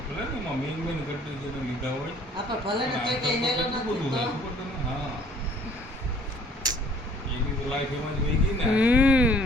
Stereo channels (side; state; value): both; normal; correlation 0.57